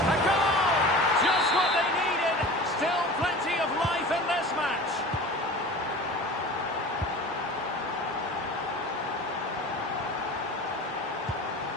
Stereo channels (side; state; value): both; normal; correlation 0.37